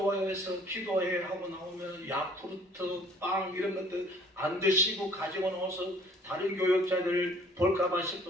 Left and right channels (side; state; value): both; normal; correlation 0.55